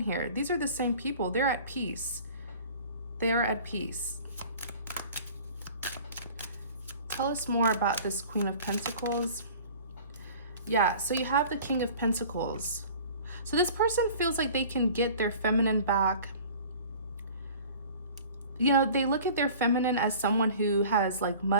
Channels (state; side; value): inverted; both; correlation -0.44